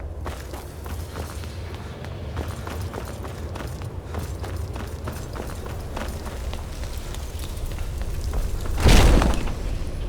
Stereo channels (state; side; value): identical; both; correlation 1.00